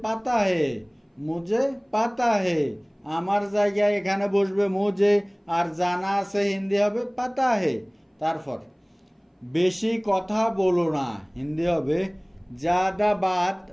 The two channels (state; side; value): identical; both; correlation 1.00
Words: পাতা হে, মুঝে পাতা হে। আমার জায়গায় এখানে বসবে মুঝে, আর জানা আছে হিন্দি হবে পাতা হে। তারপর বেশি কথা বলো না, হিন্দি হবে জ্যাদা বাত